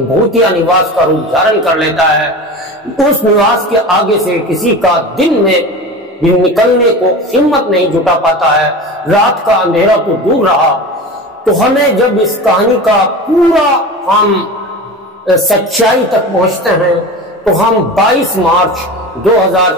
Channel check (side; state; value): both; normal; correlation 0.31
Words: भूतिया निवास का रूप धारण कर लेता है। उस निवास के आगे से किसी का दिन में भी निकलने को हिम्मत नहीं जुटा पाता है। रात का अंधेरा तो दूर रहा। तो हमें जब इस कहानी का पूरा हम सच्चाई तक पहुंचते हैं, तो हम 22 मार्च